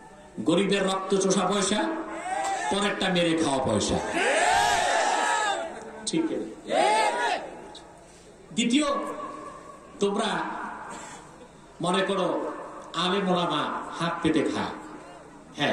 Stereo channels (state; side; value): identical; both; correlation 1.00